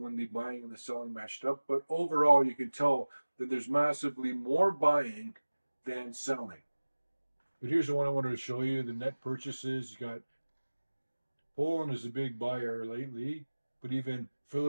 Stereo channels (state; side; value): inverted; both; correlation -1.00